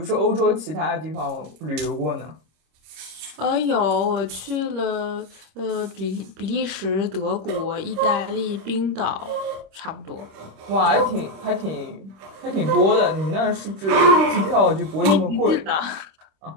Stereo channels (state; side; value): late; left; 26 ms